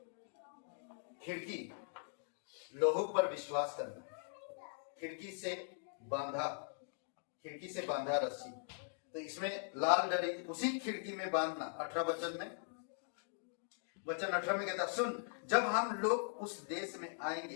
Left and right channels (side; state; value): right; silent; digital silence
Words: खिड़की, लोगों पर विश्वास करना, खिड़की से बांधा रस्सी, तो इसमें लाल डरी उसी खिड़की में बांधना। 18 वचन में, वचन 18 में कहता, सुन जब हम लोग उस देश में